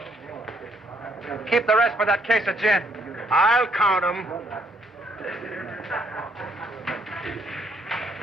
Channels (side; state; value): both; normal; correlation 0.70